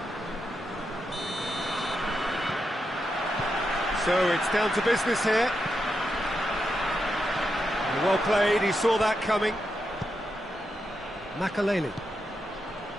So it's down to business here. Well played, he saw that coming. Makaleli.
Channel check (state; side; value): normal; both; correlation 0.85